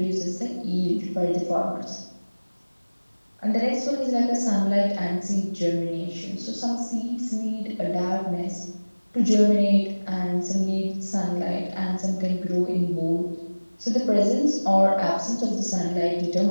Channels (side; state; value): both; inverted; correlation -1.00